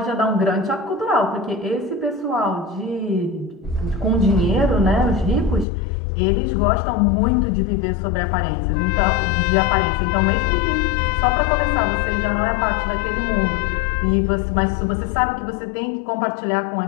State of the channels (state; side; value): drops out; right; at 5.7 s